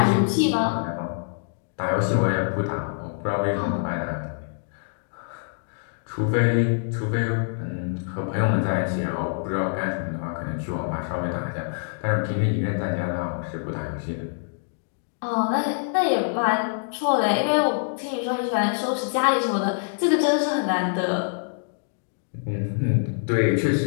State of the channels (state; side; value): silent; right; digital silence